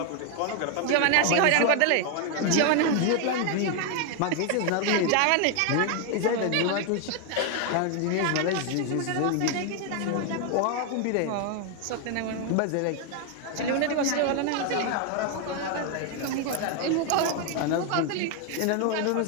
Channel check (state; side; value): different; both; correlation 0.01